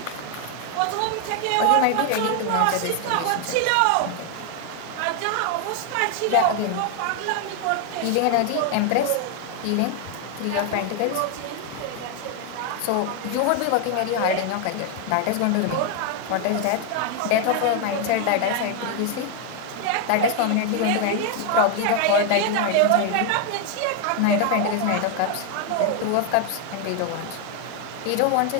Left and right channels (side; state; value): both; different; correlation 0.01